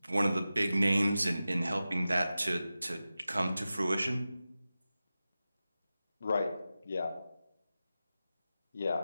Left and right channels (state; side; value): inverted; both; correlation -0.94